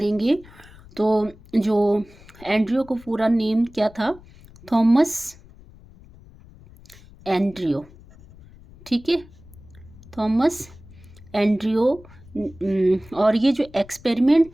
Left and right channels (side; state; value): left; noise; rumble, 22 dB below the sound